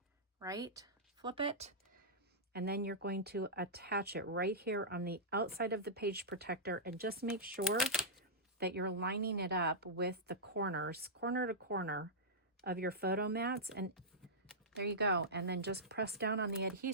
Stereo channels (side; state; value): both; normal; correlation -0.13